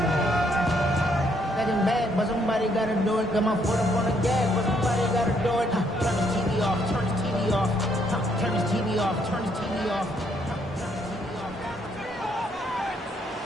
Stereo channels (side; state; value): both; normal; correlation 0.71